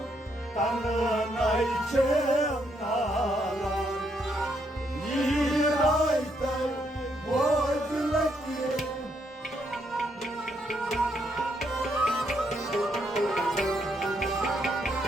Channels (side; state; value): both; normal; correlation 0.75